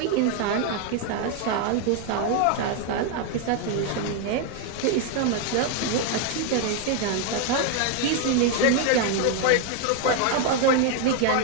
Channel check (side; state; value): both; different; correlation 0.01